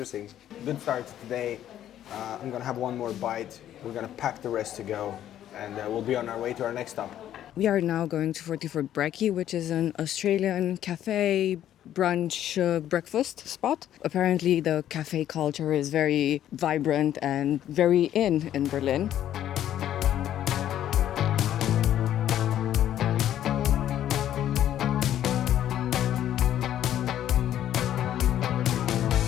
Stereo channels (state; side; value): quieter; right; 11.4 dB